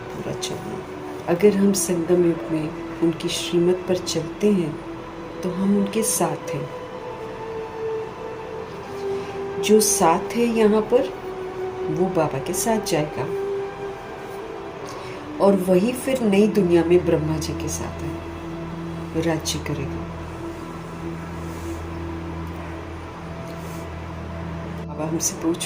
पूरा चलना। अगर हम संगम युग में उनकी श्रीमत पर चलते हैं तो हम उनके साथ हैं। जो साथ है यहाँ पर वो बाबा के साथ जाएगा, और वही फिर नई दुनिया में ब्रह्मा जी के साथ है, राज्य करेगा। बाबा हमसे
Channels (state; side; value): identical; both; correlation 1.00